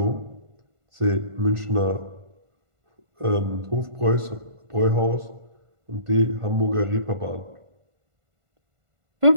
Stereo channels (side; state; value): left; late; 1.5 ms